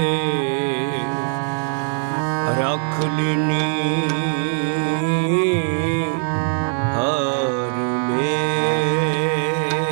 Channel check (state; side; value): silent; left; digital silence